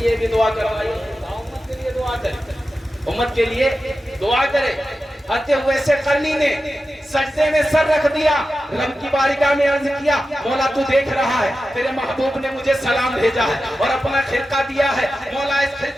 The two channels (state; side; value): normal; both; correlation 0.92